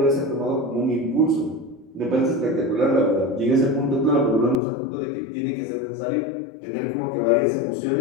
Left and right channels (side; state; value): right; drops out; at 4.5 s